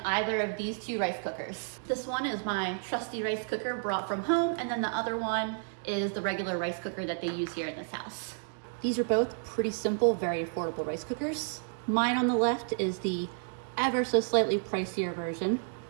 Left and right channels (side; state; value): left; silent; digital silence